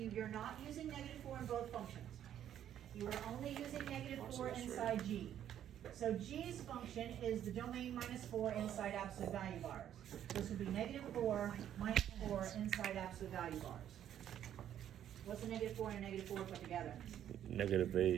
you're not using -4 in both functions. You are only using -4 inside G. So G's function is the domain -4 inside absolute value bars. This would be -4 minus 4 inside absolute value bars. What's a -4 and a -4 put together?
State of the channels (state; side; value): quieter; left; 10.5 dB